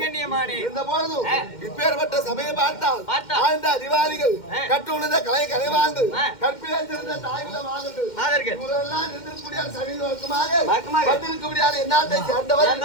இருந்த போதும் இப்பேற்பட்ட சமயம் பார்த்தால் வாழ்ந்த அதிகாரிகள் கற்றுணர்ந்த கலை கலைவாழ்ந்து கற்பிலே சிறந்த தாய்குல மாதர்கள் இவரெல்லாம் நின்றிருக்கக்கூடிய சமீபமாக வந்திருக்கக்கூடிய என்னாட்டை சேர்ந்தவர்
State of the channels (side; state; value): right; late; 2.1 ms